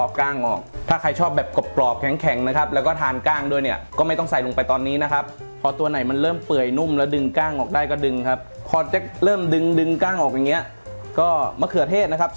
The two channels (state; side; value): inverted; both; correlation -1.00